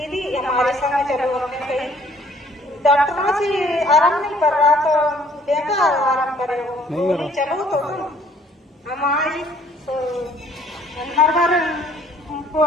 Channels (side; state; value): both; normal; correlation 0.60